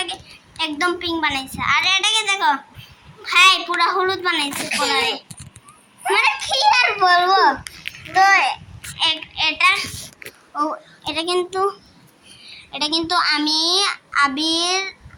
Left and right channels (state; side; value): identical; both; correlation 1.00